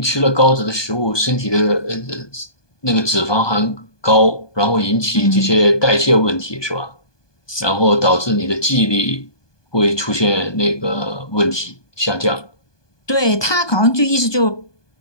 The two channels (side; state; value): right; late; 1.2 ms